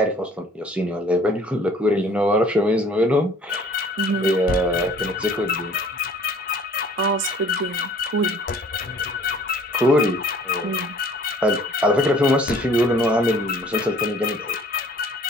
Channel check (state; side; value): normal; both; correlation 0.54